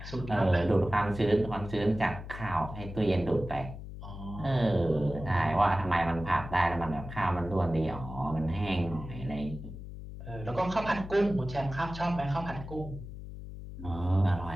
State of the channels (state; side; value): noise; left; hum, 11 dB below the sound